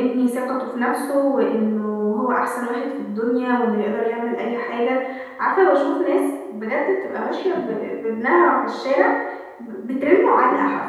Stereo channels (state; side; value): identical; both; correlation 1.00